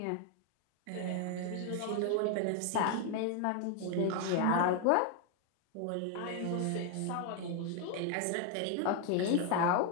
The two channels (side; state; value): both; different; correlation 0.00